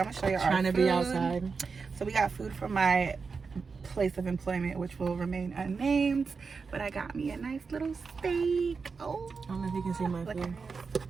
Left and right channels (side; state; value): left; quieter; 5.0 dB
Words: gonna show you our Trying to food. be outside. So we got food from my place of employment, which will remain unnamed. But I got me a nice little steak. Oh, I don't know if you can see my food.